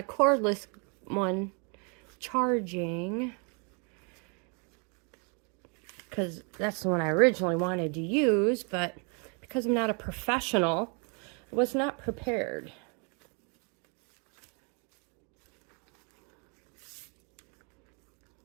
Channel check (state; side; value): quieter; left; 36.0 dB